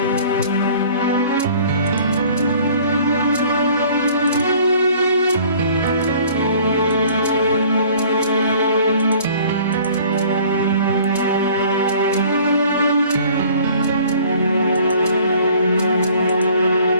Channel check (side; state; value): both; inverted; correlation -0.52